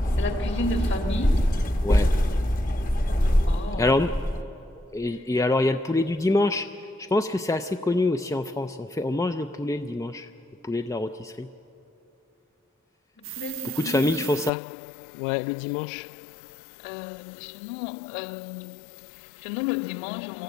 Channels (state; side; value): drops out; right; at 14.5 s